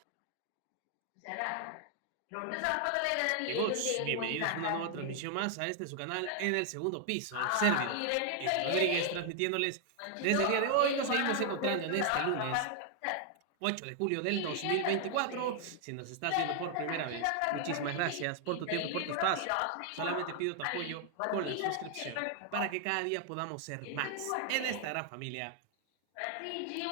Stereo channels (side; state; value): both; different; correlation 0.00